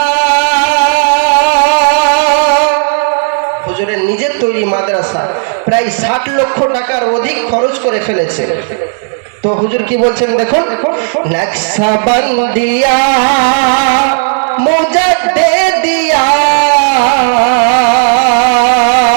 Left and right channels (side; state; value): left; silent; digital silence